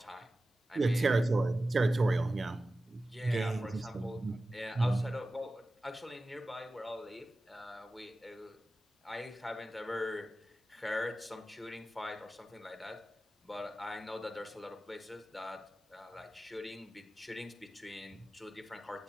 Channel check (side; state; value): both; normal; correlation 0.95